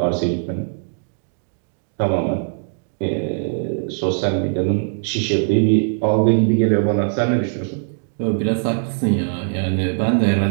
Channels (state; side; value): silent; left; digital silence